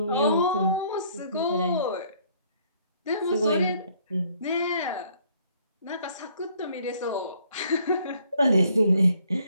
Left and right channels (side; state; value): both; inverted; correlation -0.63